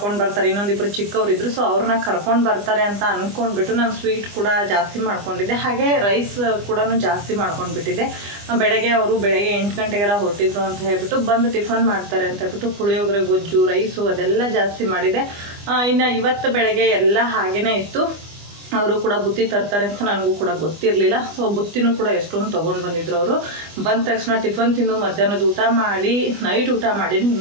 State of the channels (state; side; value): late; left; 25 ms